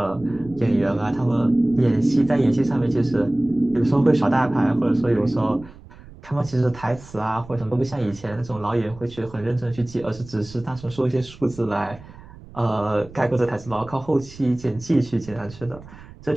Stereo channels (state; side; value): noise; right; rumble, 19 dB below the sound